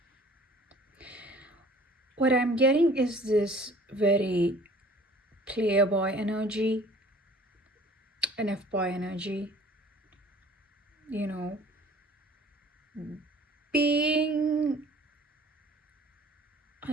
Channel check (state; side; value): normal; both; correlation 0.51